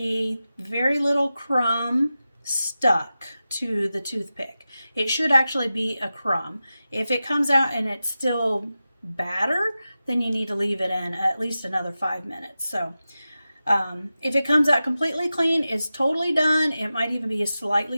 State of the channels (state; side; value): inverted; both; correlation -0.93